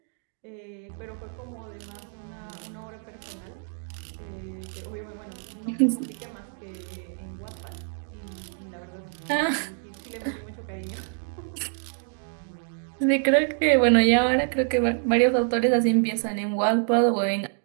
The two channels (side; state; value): left; silent; 57 dB below the other